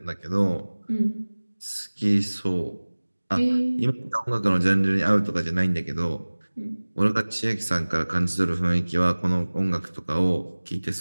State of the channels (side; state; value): both; inverted; correlation -1.00